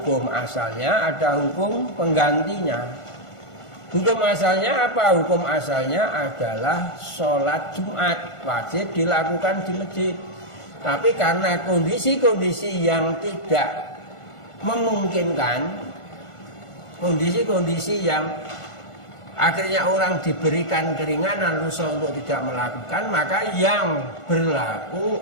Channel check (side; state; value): right; late; 1.5 ms